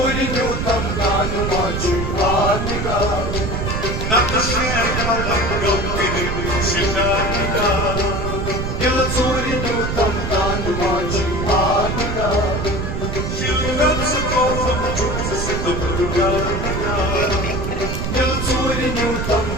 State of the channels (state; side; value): noise; right; rumble, 2 dB below the sound